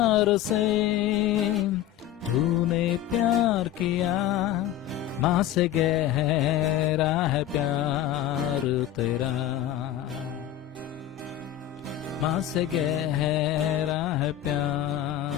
से तूने प्यार किया. माँ से गहरा है प्यार तेरा. माँ से गहरा है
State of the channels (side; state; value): right; quieter; 11.8 dB